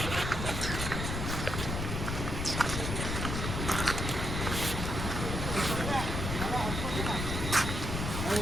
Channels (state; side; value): noise; left; rumble, 2 dB below the sound